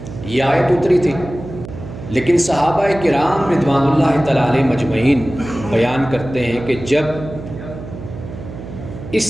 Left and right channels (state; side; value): noise; right; hum, 12 dB below the sound